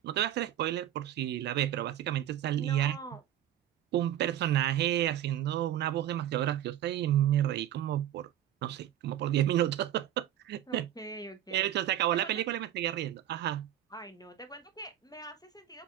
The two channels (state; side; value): quieter; left; 11.9 dB